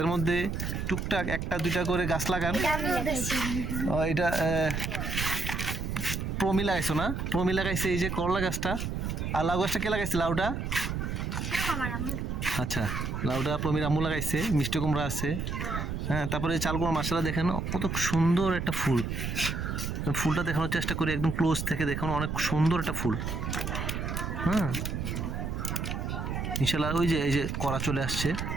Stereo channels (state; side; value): noise; right; rumble, 3 dB below the sound